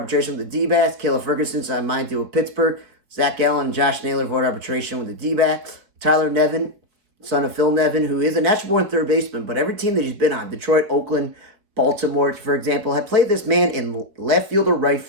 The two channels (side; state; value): left; late; 4.8 ms